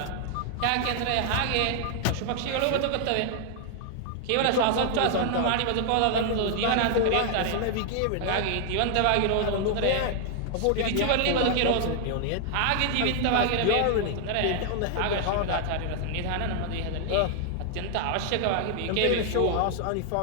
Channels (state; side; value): different; both; correlation 0.00